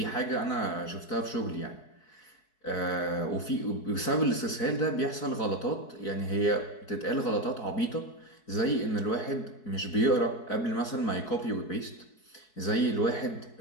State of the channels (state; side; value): late; right; 4.7 ms